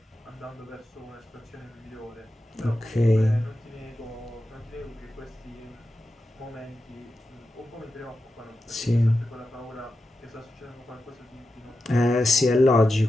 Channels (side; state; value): both; normal; correlation 0.90